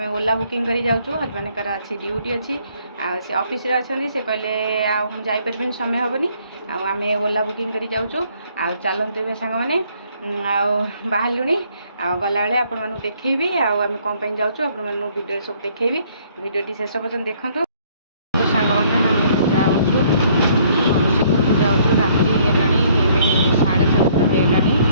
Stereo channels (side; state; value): both; inverted; correlation -0.63